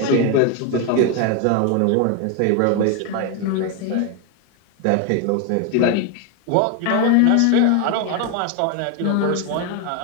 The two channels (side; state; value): both; different; correlation 0.01